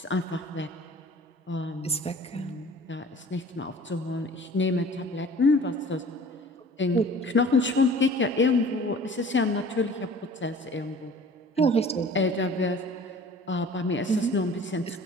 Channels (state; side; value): normal; both; correlation 0.46